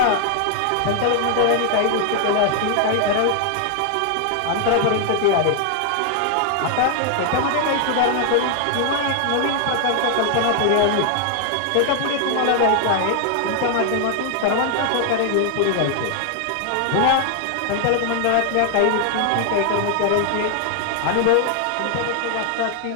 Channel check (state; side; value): different; both; correlation 0.00